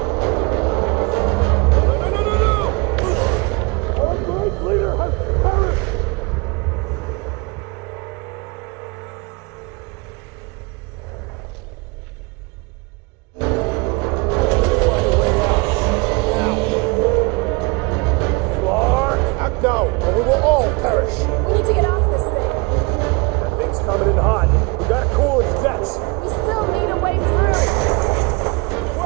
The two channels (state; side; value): quieter; left; 28.0 dB